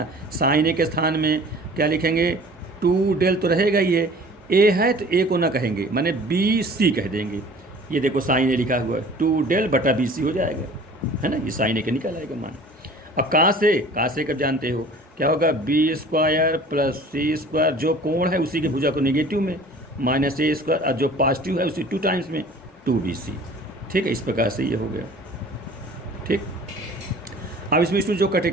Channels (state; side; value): normal; both; correlation 0.47